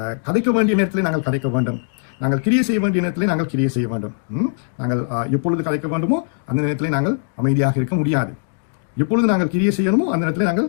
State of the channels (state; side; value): silent; right; digital silence